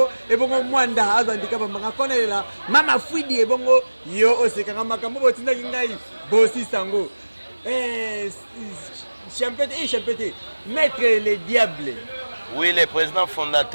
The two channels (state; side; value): inverted; both; correlation -1.00